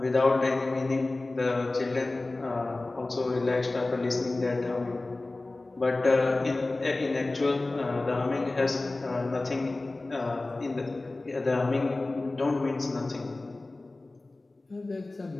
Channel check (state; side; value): quieter; right; 3.0 dB